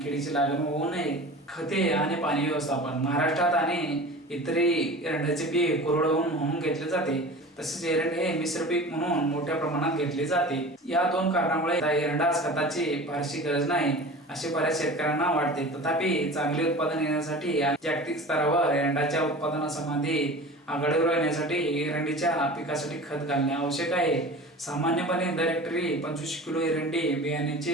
किडीची लागण होऊ नये. खते आणि पाणी व्यवस्थापन. महाराष्ट्रात आणि इतरही एरंडाचे पीक कोरडवाहू म्हणून घेतले जाते. तसेच एरंड हे मिश्र पीक म्हणून मोठ्या प्रमाणात घेतले जाते. या 2 कारणामुळे एरंडास खताची फारशी गरज नाही असे बऱ्याच शेतकऱ्यांना वाटते. तथापि चांगले उत्पादन येण्यासाठी जागतिक स्तरावर एरंडाच्या उत्पादनासंबंधी आघाडीवर येण्यासाठी एरंडीच्या पिकासाठी खत घालणे आवश्यक आहे. सामान्यपणे दर हेक्टरी 25 किलो एरंडी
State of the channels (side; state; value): both; normal; correlation 0.37